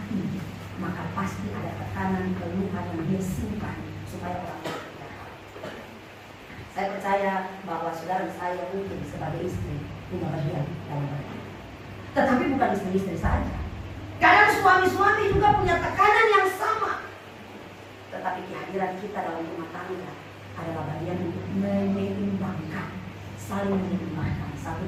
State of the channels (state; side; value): identical; both; correlation 1.00